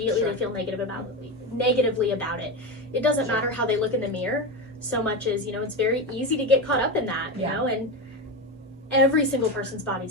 Sure. they feel negatively about it. It doesn't Sure. matter how they look in the mirror so much as, you know, it's very easy to get caught up in that, you Yeah. know, and every single person's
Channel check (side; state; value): both; normal; correlation 0.17